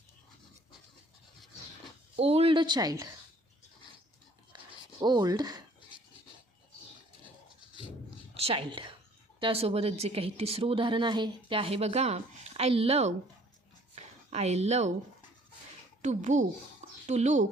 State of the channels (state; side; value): normal; both; correlation 0.57